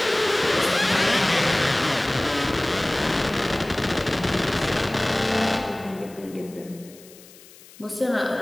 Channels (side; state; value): left; noise; hiss, 22 dB below the sound